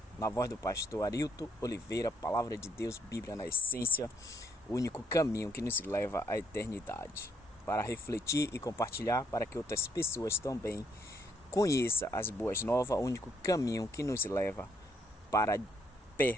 na voz do pastor Arilton Oliveira, Palavra de Deus, Bíblia na essência, o único caminho que nos leva à eternidade. Para refletir e compartilhar, para que outras pessoas também conheçam as boas novas, o único caminho que nos leva para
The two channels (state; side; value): normal; both; correlation 0.71